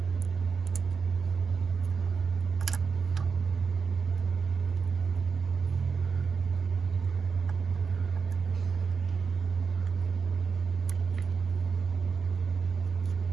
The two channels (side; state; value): left; quieter; 5.5 dB